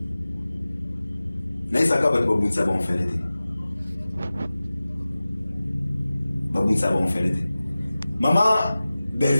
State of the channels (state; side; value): inverted; both; correlation -0.97